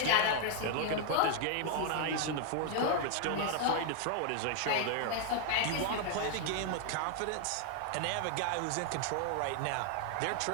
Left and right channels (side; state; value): both; different; correlation 0.00